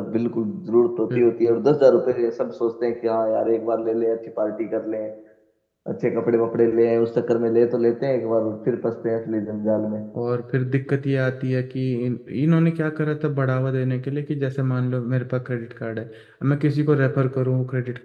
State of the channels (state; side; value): identical; both; correlation 1.00